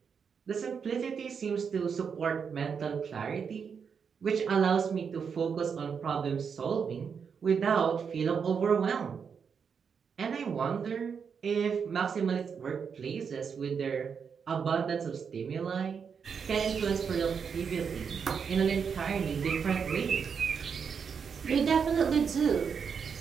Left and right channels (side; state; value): left; quieter; 6.5 dB